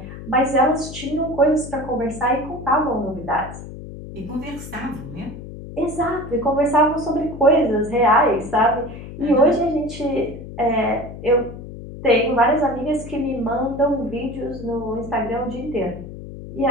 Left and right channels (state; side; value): noise; left; hum, 12 dB below the sound